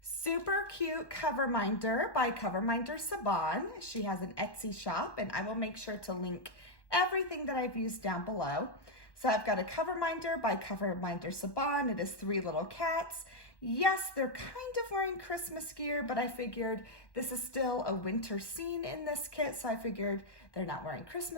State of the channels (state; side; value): late; right; 1.1 ms